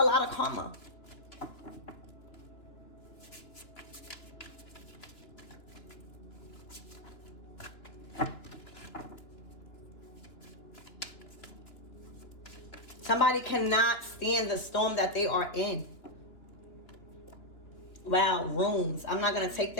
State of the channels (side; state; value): right; late; 2.9 ms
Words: lot of karma. Somebody cannot stand the storm that they are in. Wow, runes. I'm not going to take